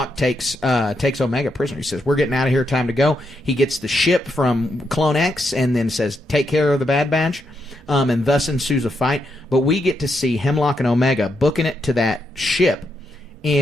takes Omega prisoner. He says, we're getting out of here, time to go. He gets the ship from Clone X and then says, take care of the Bad Batch, and thus ensues a fight. But we get to see Hemlock and Omega booking it to that ship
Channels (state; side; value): normal; both; correlation 0.81